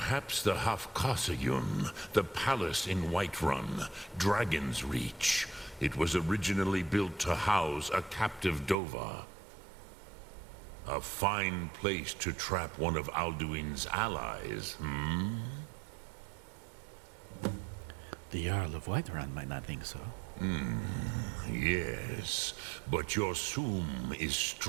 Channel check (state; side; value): drops out; left; at 8.8 s